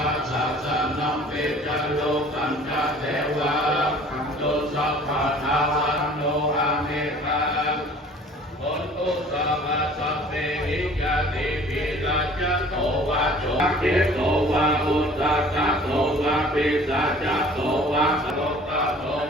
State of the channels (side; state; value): both; normal; correlation 0.50